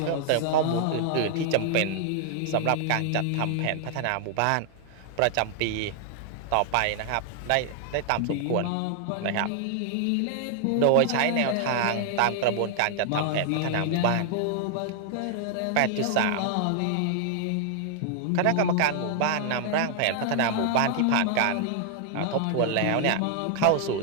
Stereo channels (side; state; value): both; different; correlation 0.00